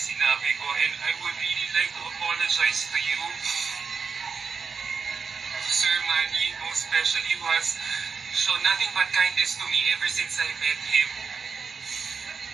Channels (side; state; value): left; quieter; 5.4 dB